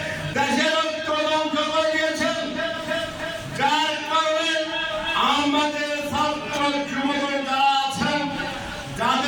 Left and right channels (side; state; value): both; identical; correlation 1.00